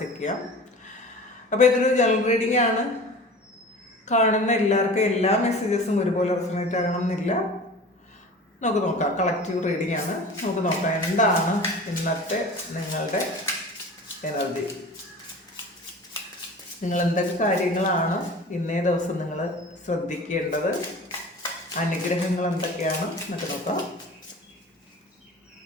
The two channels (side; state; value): both; normal; correlation 0.38